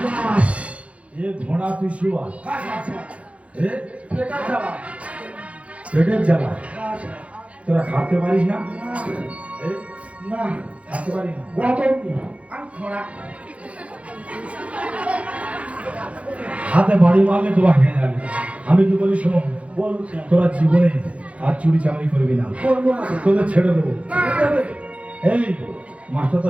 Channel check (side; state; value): left; late; 0.063 ms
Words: এ ঘোড়া তুই শুয়া হ্যাঁ স্যার এ এটা যাবা পেটের জ্বালা হ্যাঁ স্যার তোরা খাতে পারিস না এ না খাতে পারিস না গতম আমি খোঁড়া হাতে বাড়ি মারলে তোরা হেঁটে যাবে আমি কি বলি শোনো বলুন স্যার তোরা জীবনে আর চুরি চাকরি করবি না করবো না স্যার তোদের ছেড়ে দেবো না দেবে এই মাস্টারটা